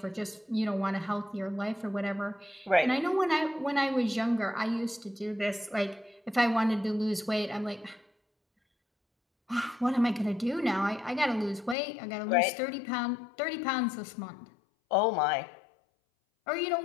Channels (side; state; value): right; drops out; at 11.8 s